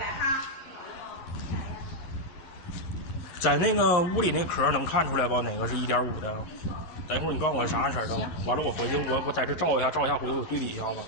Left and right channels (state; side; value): late; right; 11 ms